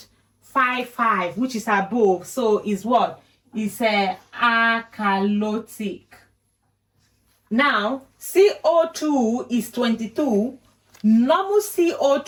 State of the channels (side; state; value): both; identical; correlation 1.00